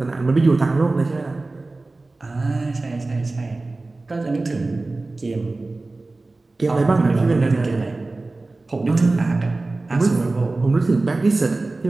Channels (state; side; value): quieter; left; 3.2 dB